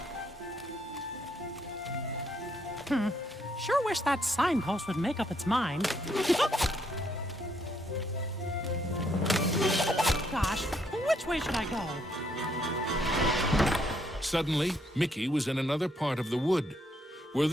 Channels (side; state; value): both; normal; correlation 0.72